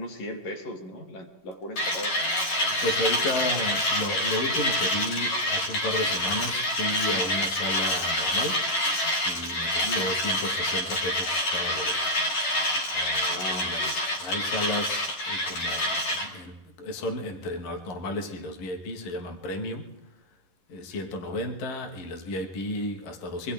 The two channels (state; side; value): late; right; 11 ms